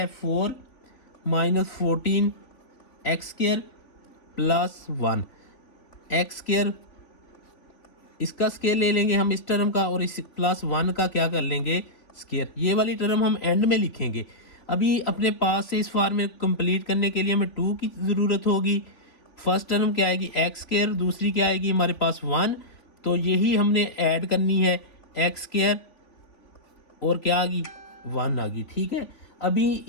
4 - 14 x² + 1 x², इसका स्केयर ले लेंगे हम इस टर्म का, और इस +1 का क्या कर लेंगे? स्केयर। ये वाली टर्म हम एंड में लिखेंगे। अभी अपने पास से इस फॉर्म में कंप्लीट करने के लिए हमें 2 की ज़रूरत होगी। फर्स्ट टर्म क्या आएगी? x², दूसरी क्या आएगी हमारे पास? 1। तो यही हमने ऐड करनी है, x² और क्या आ गई? 1 आ गई। ठीक है, अभी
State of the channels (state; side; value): late; right; 3.3 ms